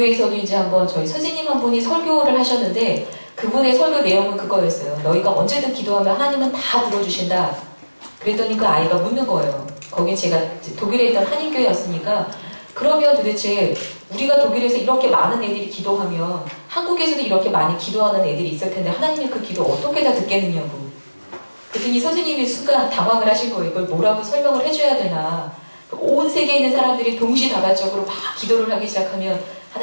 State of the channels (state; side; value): inverted; both; correlation -1.00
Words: 이제 한번 저희 선생님 한 분이 설교를 하셨는데 그분의 설교 내용은 그거였어요. 너희가 언제든 기도하면 하나님은 다 들어주신다. 그랬더니 그 아이가 묻는 거예요. 거기 제가 독일에 있던 한인교회였으니까 그러면 도대체 우리가 독일에서 이렇게 많은 애들이 기도하면 한국에서도 이렇게 많이 기도하는 애들이 있을 텐데 하나님이 그 기도 어떻게 다 듣겠느냐고. 그랬더니 선생님이 순간 당황을 하신 거예요. 이걸 뭐라고 설명을 해줘야 되나. 온 세계에 있는 사람들이 동시다발적으로 막 기도를 하기 시작하면